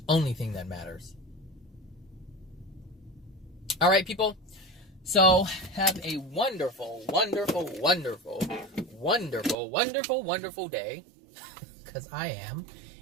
only thing that matters. All right, people. So have a wonderful, wonderful, wonderful, wonderful, wonderful, wonderful day. Because I am.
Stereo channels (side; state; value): left; drops out; at 9.6 s